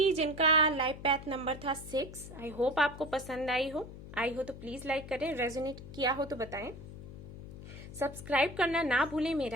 जिनका लाइफ पैथ नंबर था 6। आई होप आपको पसंद आई हो तो प्लीज लाइक करें, रेजोनेट किया हो तो बताएं, सब्सक्राइब करना ना भूलें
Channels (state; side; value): noise; left; hum, 13 dB below the sound